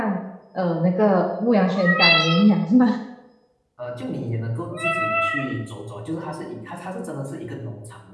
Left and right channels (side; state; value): both; identical; correlation 1.00